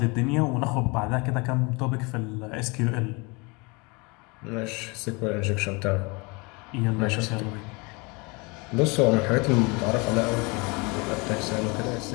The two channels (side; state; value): right; quieter; 28.2 dB